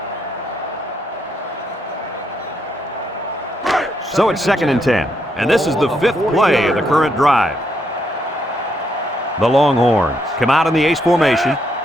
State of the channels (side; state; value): both; normal; correlation 0.77